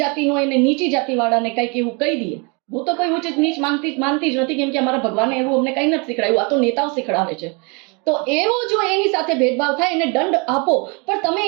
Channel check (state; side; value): quieter; left; 31.9 dB